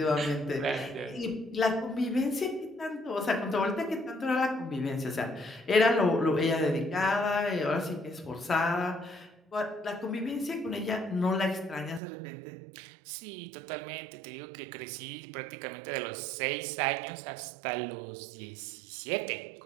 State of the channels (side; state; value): left; drops out; at 12.0 s